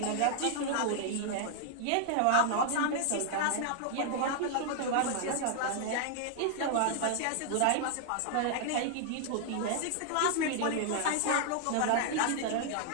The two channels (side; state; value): both; different; correlation 0.00